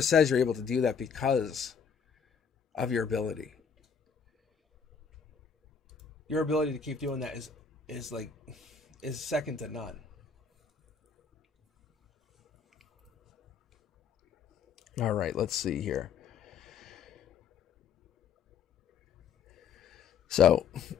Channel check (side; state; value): right; quieter; 6.5 dB